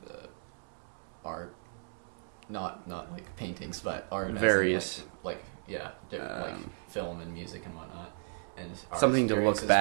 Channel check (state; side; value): silent; left; digital silence